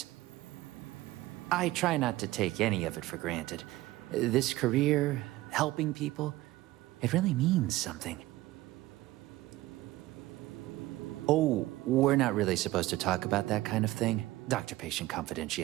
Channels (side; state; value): left; quieter; 17.4 dB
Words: I try not to take any of it for granted. This career, helping people, it really means something. Oh, we're not really supposed to talk about that kind of thing. Doctor-patient